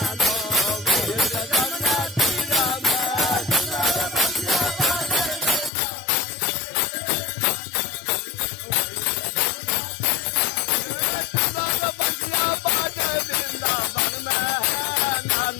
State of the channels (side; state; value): right; drops out; at 5.7 s